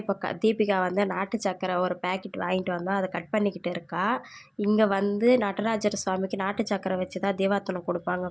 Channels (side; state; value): both; identical; correlation 1.00